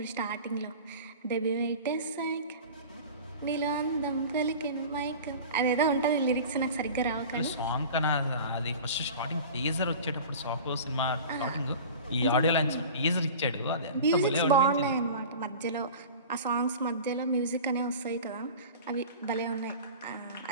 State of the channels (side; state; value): both; inverted; correlation -0.37